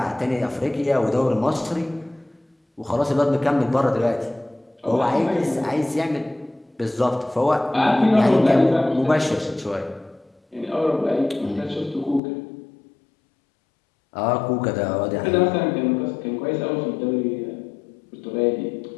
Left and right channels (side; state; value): right; drops out; at 12.2 s